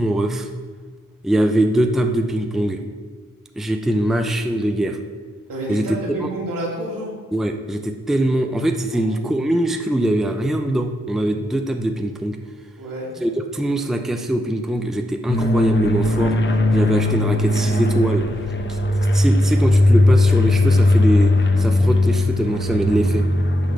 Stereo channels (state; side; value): normal; both; correlation 0.85